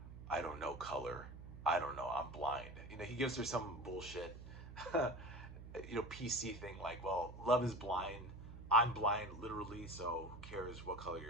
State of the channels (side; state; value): right; noise; hum, 12 dB below the sound